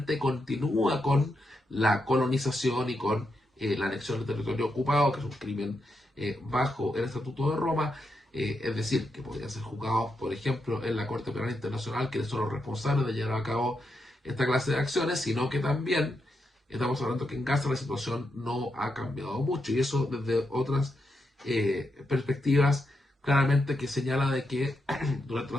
continúa con la colonización y con la anexión del territorio ocupado, que es un crimen bajo el Estatuto de Roma, es decir, que podrían ser juzgados, por ejemplo, en la Corte Penal Internacional, que son los responsables de llevar a cabo esta clase de acciones, sino que también estamos hablando que en Gaza la situación no ha cambiado mucho, y eso desde otras perspectivas claramente que señala de que durante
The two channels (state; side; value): normal; both; correlation 0.84